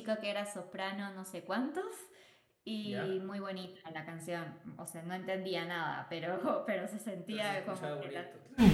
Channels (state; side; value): identical; both; correlation 1.00